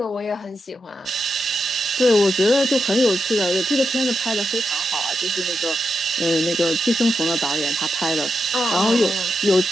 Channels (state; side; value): normal; both; correlation 0.86